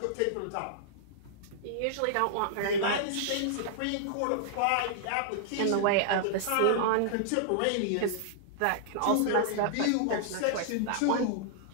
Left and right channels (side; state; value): both; different; correlation -0.01